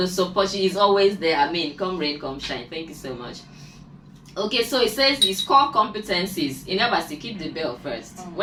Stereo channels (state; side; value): identical; both; correlation 1.00